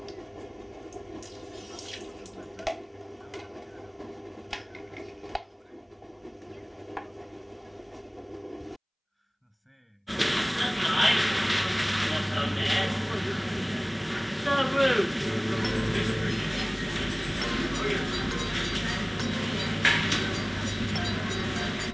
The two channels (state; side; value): identical; both; correlation 1.00